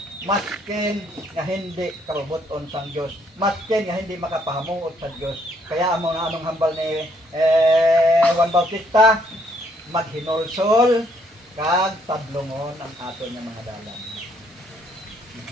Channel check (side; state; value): both; normal; correlation 0.69